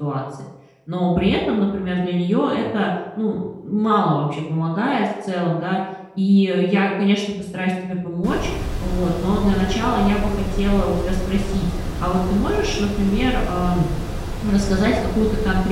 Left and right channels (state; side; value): identical; both; correlation 1.00